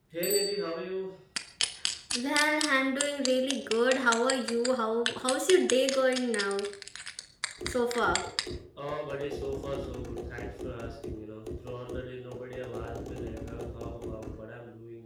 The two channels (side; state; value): both; identical; correlation 1.00